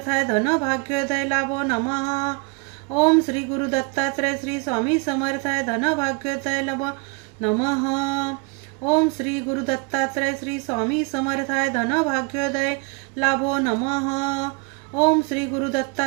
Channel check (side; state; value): left; quieter; 30.7 dB